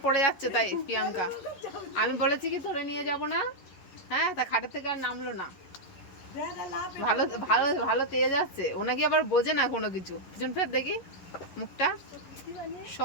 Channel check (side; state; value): right; late; 11 ms